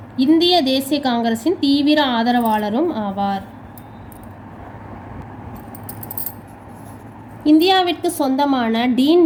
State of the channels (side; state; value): both; identical; correlation 1.00